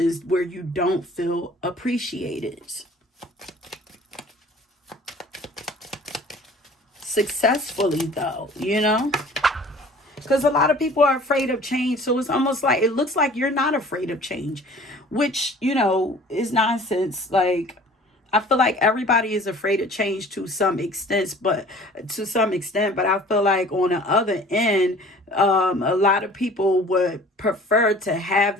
where you don't feel appreciated. Successfully though, you know, because a lot of people are afraid of change. So it's almost like, it looks like you're not afraid of change, which, you know, is nonsense. Like, I feel like everybody is afraid of change to some extent, but I feel like on the other end, a lot of people would prefer to have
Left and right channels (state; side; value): normal; both; correlation 0.48